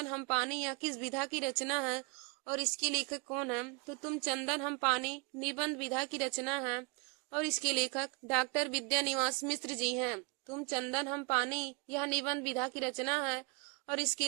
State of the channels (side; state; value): left; quieter; 31.0 dB